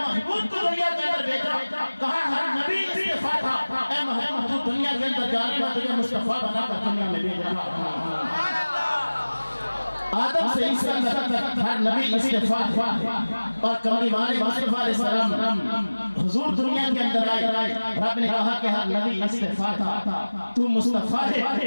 کو دنیا کے اندر بھیجا کہا ہر نبی استفاء تھا، اے محبوب تو دنیا کے اندر جانے میں تجھے مصطفیٰ بنا کر دنیا میں بھیج رہا۔ آدم سے عیسیٰ تک ہر نبی استفاء تھا، اور کملی والے مصطفیٰ علیہ السلام حضور دنیا کے اندر آئے، رب نے کہا کہ ہر نبی استفاء تھا، تو مصطفیٰ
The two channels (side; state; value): both; inverted; correlation -1.00